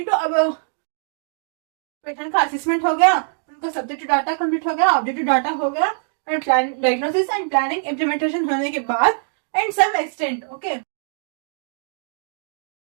टू अब पेशेंट का असेसमेंट हो गया, उनका सब्जेक्टिव डाटा कंप्लीट हो गया, ऑब्जेक्टिव डाटा हो गया, and diagnosis and planning implementation होने के बाद and some extent, okay,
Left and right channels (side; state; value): left; silent; digital silence